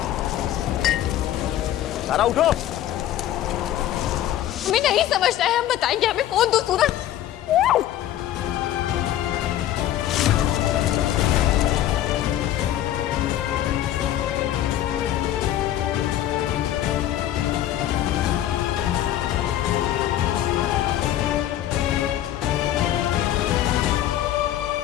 तारा उठो। हमें नहीं समझना है, हम बताएंगे। हमें कौन दो सूरज।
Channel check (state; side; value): quieter; right; 12.4 dB